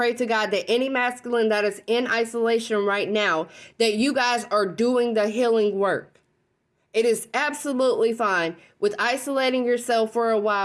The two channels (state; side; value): identical; both; correlation 1.00